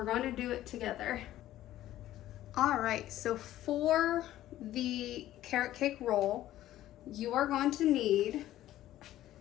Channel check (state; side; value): quieter; right; 13.9 dB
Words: going to do it together. All right, so for the carrot cake roll, you are going to need